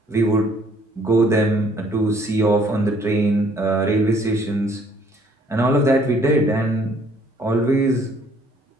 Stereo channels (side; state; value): both; normal; correlation 0.61